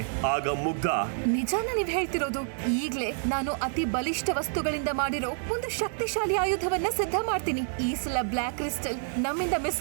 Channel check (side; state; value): left; silent; 59 dB below the other